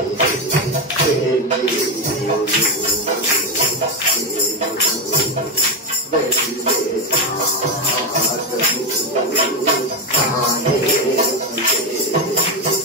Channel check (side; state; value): both; normal; correlation 0.10